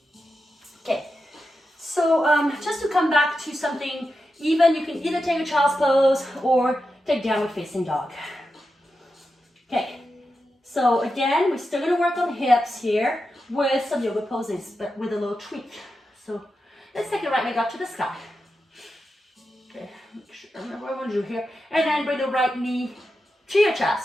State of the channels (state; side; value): normal; both; correlation 0.89